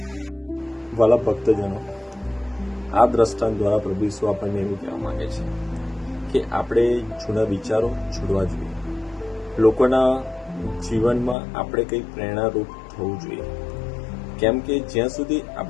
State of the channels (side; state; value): right; drops out; at 11.4 s